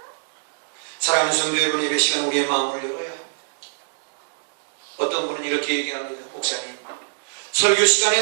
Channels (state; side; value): silent; left; digital silence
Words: 사랑하는 성도 여러분, 예배 시간 우리의 마음을 열어야 합니다. 어떤 분은 이렇게 얘기합니다. 목사님, 설교 시간에